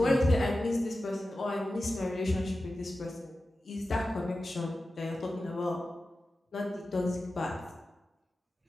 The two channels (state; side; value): normal; both; correlation 0.94